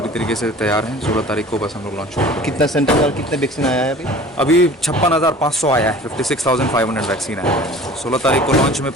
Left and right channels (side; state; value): both; normal; correlation 0.44